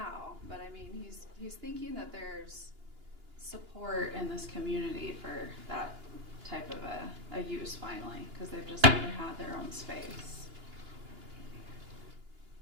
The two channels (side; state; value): left; late; 2.9 ms